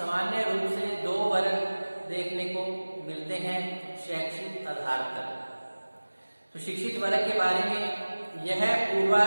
रूप से 2 वर्ग देखने को मिलते हैं शैक्षिक आधार पर। तो शिक्षित वर्ग के बारे में यह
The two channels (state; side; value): inverted; both; correlation -1.00